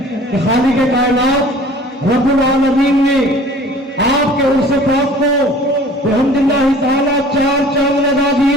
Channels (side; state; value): both; normal; correlation 0.48